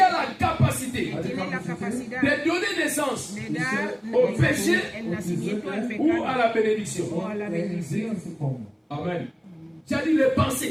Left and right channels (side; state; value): both; identical; correlation 1.00